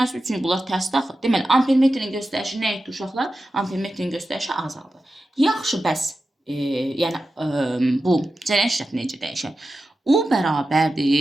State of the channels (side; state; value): both; normal; correlation 0.92